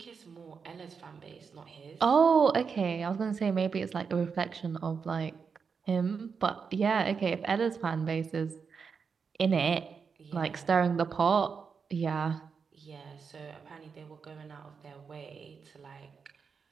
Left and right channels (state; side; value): quieter; left; 5.8 dB